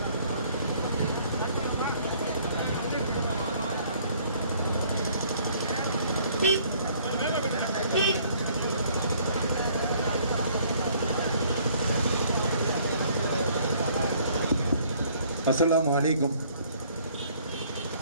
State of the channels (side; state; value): both; inverted; correlation -0.60